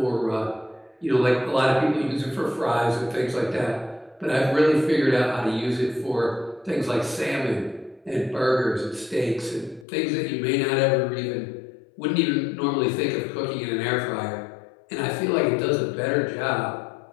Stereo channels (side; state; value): right; drops out; at 9.9 s